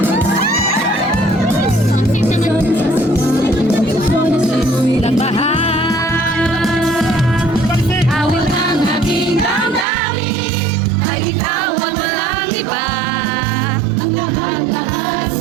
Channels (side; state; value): left; drops out; at 9.9 s